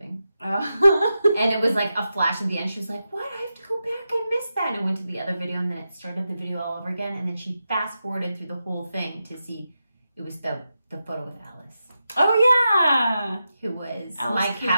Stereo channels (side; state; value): both; inverted; correlation -0.89